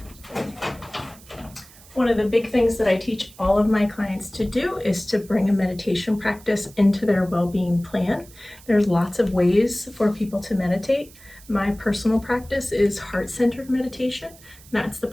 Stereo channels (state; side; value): noise; right; hiss, 23 dB below the sound